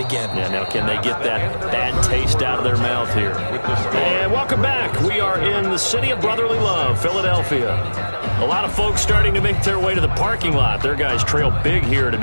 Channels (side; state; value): both; inverted; correlation -1.00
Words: Yeah, now can they get that bad taste out of their mouth here? And welcome back. We are in the city of brotherly love, Philadelphia. A lot of folks starting to make their way to the parking lot. Their guys trail big here to